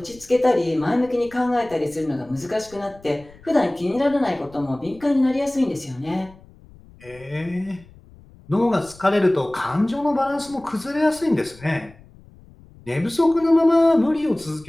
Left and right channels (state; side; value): noise; left; rumble, 24 dB below the sound